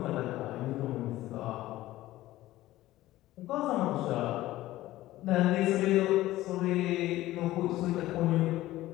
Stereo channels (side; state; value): right; quieter; 16.1 dB